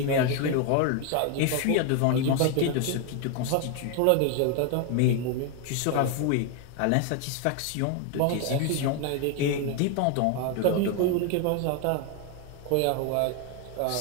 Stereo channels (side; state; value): both; different; correlation 0.01